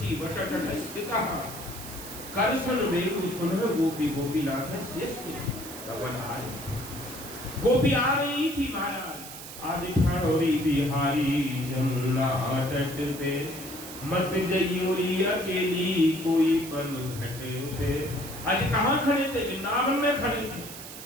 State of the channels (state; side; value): noise; right; hiss, 12 dB below the sound